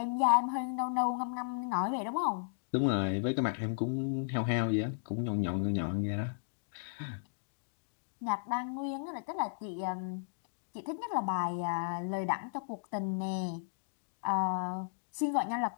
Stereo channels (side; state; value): right; silent; digital silence